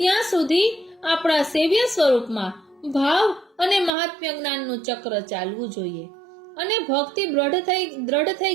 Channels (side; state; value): left; drops out; at 3.9 s